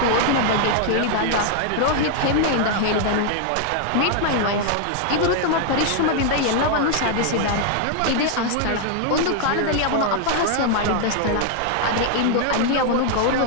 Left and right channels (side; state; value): both; different; correlation 0.00